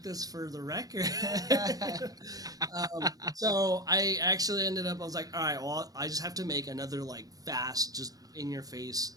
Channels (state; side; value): late; left; 0.18 ms